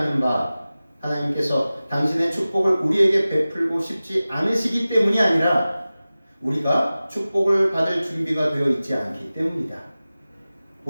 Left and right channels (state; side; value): inverted; both; correlation -0.96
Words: 바, 하나님께서 당신의 축복을 우리에게 베풀고 싶지 않으시기 때문이 아니라 우리가 축복을 받을 준비가 되어 있지 않기 때문이다.